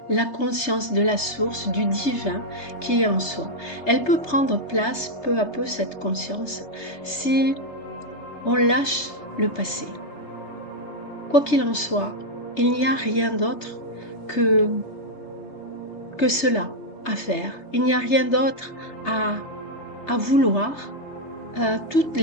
la conscience de la source, du divin qui est en soi. Elle peut prendre place peu à peu, cette conscience, si on lâche le passé. Quoi qu'il en soit, il n'y a rien d'autre que cela à faire. Il n'y a rien d'autre à vouloir. Tous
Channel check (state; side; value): late; right; 3.3 ms